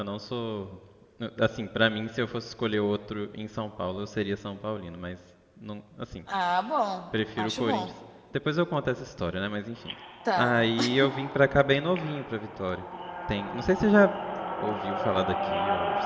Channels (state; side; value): identical; both; correlation 1.00